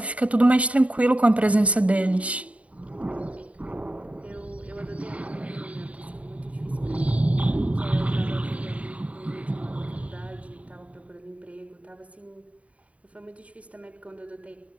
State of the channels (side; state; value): left; late; 0.066 ms